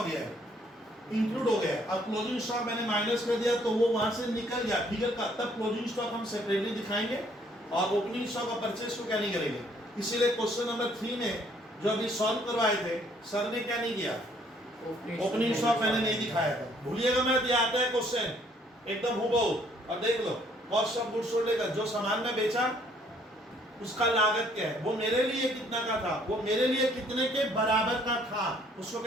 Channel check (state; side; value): normal; both; correlation 0.63